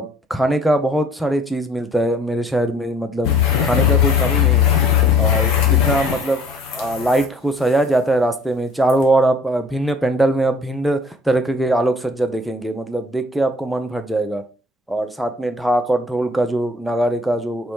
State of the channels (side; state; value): both; normal; correlation 0.54